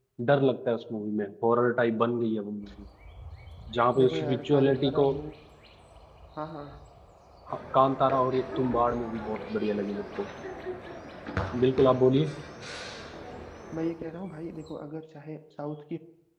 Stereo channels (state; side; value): identical; both; correlation 1.00